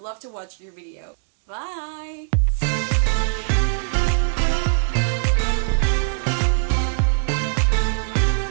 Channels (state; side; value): silent; left; 64 dB below the other